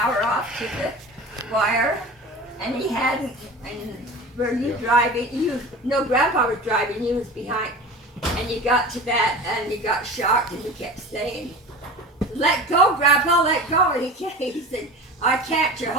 off to the wire, and he hadn't. And were you driving? Grandpa was driving. You was behind, and you got to that, and you got shocked, and you kept saying, "Let go, Grandpa, let go." And he said, "I can't. You're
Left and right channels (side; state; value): both; normal; correlation 0.34